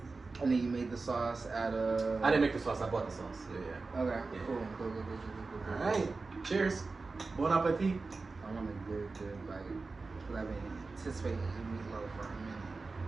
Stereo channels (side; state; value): left; quieter; 3.9 dB